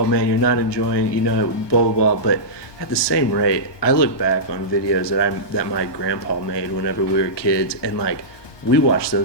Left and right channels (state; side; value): late; right; 1.2 ms